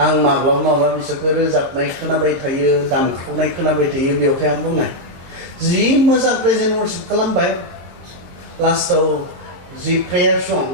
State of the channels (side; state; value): left; late; 22 ms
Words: आं माब्लाबा माब्लाबा बिसोरखौ रोजाबनाय खोनाबाय थायो दामख्रावनाय खोनाबाय थायो बेवहाय आं बुंनाय जि मोजां प्रेजेन्ट वर्शिप खालामबाय लास्टाव जि प्रेयार सं